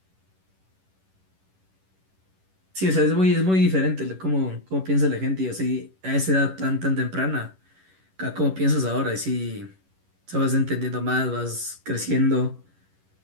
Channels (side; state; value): left; late; 11 ms